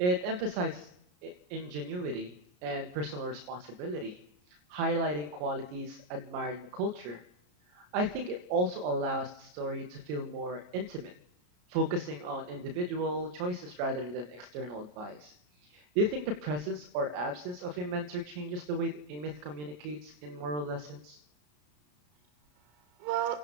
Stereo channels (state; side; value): late; left; 33 ms